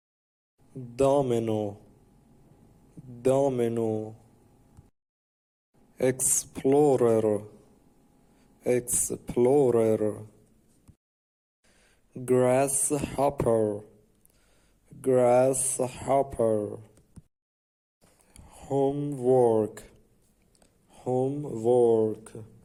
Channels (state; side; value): identical; both; correlation 1.00